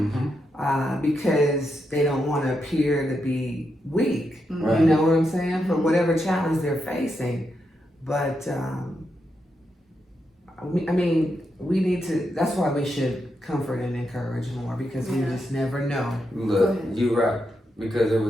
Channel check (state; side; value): normal; both; correlation 0.84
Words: because they don't want to appear to be weak. Right. You know what I'm saying? For whatever challenge they're facing. But we need to. That's why we should comfort and encourage more, because we just never know. Look, you're right. Because there